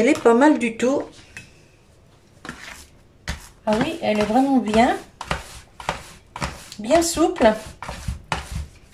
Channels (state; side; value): identical; both; correlation 1.00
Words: est pas mal du tout. Ah oui, elle est vraiment bien. Bien souple.